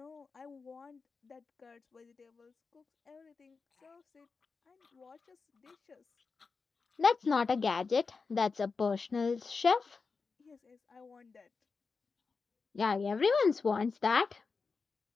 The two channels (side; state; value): right; quieter; 4.7 dB